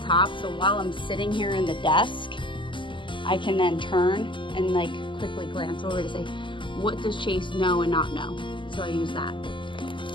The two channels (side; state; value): right; late; 0.24 ms